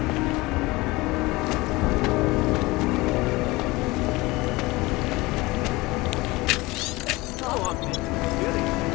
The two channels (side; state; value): right; quieter; 21.7 dB